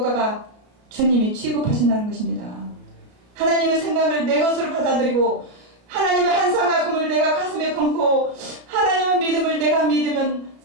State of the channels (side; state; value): left; late; 33 ms